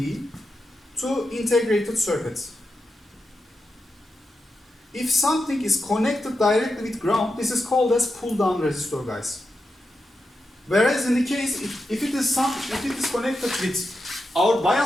to integrated circuits. If something is connected directly with ground, this is called as pull-down resistor, guys. Whereas in the case, if it is connected with our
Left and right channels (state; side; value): normal; both; correlation 0.88